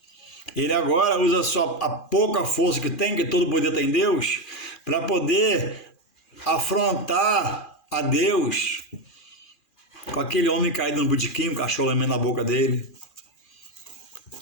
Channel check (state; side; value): late; right; 2.4 ms